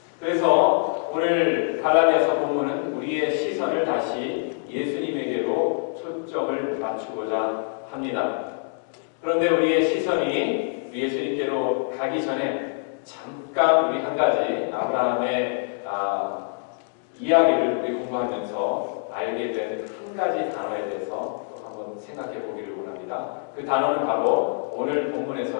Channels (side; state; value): right; silent; 62 dB below the other